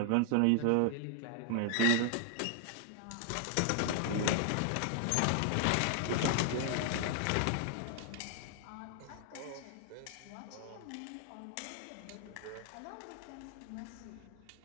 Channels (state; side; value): different; both; correlation 0.00